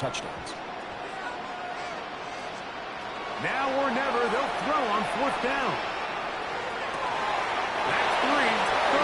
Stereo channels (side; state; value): both; identical; correlation 1.00